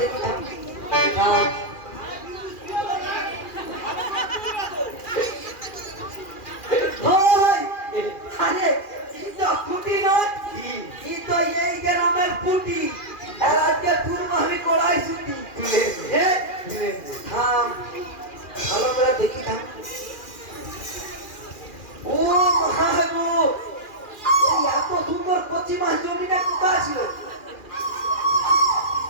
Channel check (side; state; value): right; late; 2.4 ms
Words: দেখি, থাম আরে ফুটি নয়, তো এই গ্রামের ফুটি, আর আজকে তুলবো আমি কড়াই ছুটি। থাম ভালো করে দেখি, থাম। ও মহাগো, এত সুন্দর কচি মাছ জমিটা কোথায় ছিল?